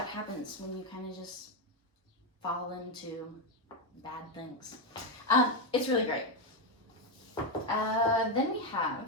happens when you kind of just fall into bad things. It's really great. Then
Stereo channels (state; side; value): normal; both; correlation 0.07